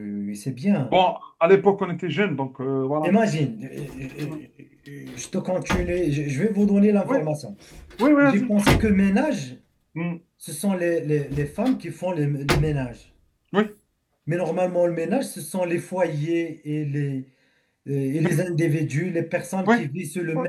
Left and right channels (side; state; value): both; identical; correlation 1.00